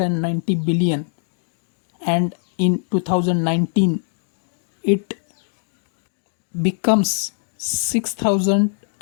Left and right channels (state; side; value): silent; right; digital silence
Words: billion, and in 2019 it becomes